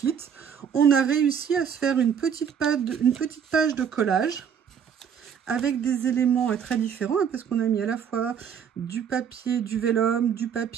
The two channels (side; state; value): left; quieter; 7.7 dB